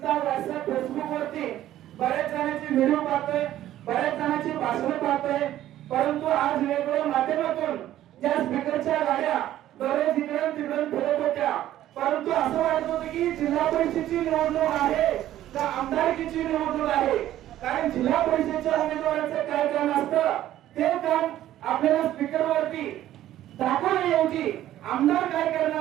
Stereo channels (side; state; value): left; quieter; 13.1 dB